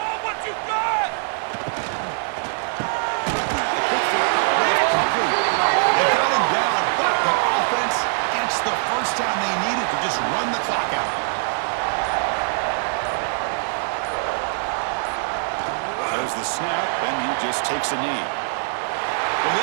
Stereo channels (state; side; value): silent; left; digital silence